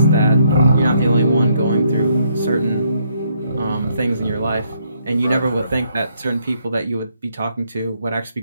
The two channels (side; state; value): both; inverted; correlation -0.72